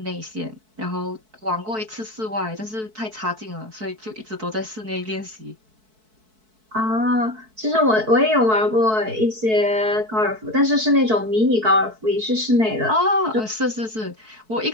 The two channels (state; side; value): late; left; 4.6 ms